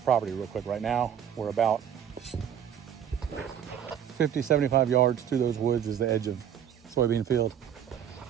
real quick. Right now, we're about 50, 75 yards through those woods is the edge of soybean field.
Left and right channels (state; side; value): quieter; left; 9.1 dB